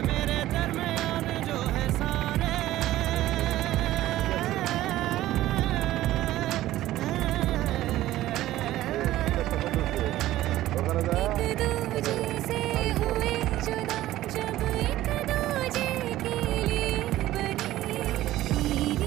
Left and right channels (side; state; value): left; quieter; 15.0 dB